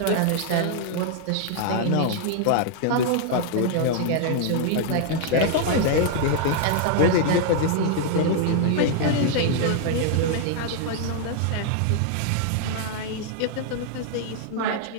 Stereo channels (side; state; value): both; different; correlation 0.00